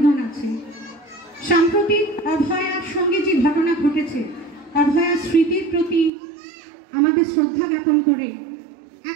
আছে। সাম্প্রতিক অভয়ার সঙ্গে যে ঘটনা ঘটেছে, অভয়ার স্মৃতির প্রতি আমাদের শ্রদ্ধা জ্ঞাপন করে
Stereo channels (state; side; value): drops out; left; at 6.1 s